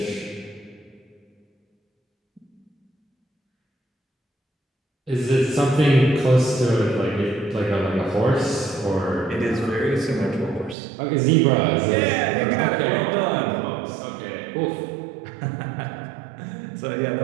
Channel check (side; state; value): left; drops out; at 10.8 s